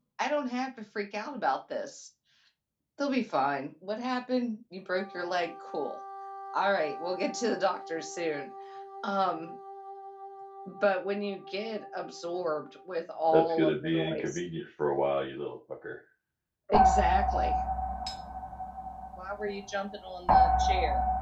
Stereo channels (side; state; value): both; identical; correlation 1.00